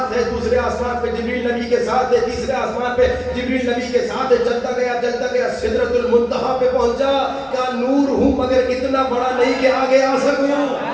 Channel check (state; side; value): identical; both; correlation 1.00